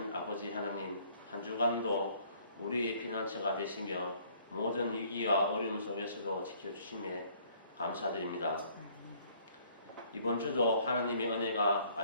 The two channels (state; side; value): inverted; both; correlation -0.60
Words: 아버지 하나님, 한 주간도 우리의 피난처가 되시며 모든 위기와 어려움 속에서도 지켜주심에 감사드립니다. 이번 주도 하나님의 은혜가